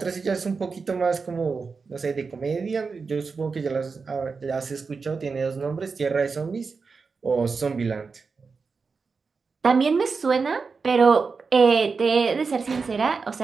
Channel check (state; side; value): quieter; left; 4.8 dB